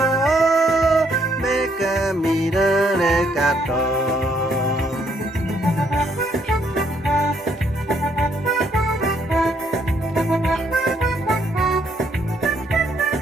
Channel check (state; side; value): normal; both; correlation 0.70